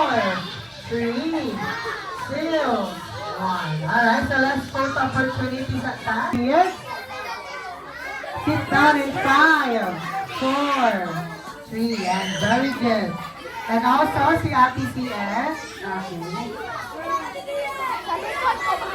3, 2, 1. Alright, so let's photo opportunity sa tayo. Kids, sit down in 5, 4, 3, and very good. And also, si Ate CS. Okay.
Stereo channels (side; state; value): both; identical; correlation 1.00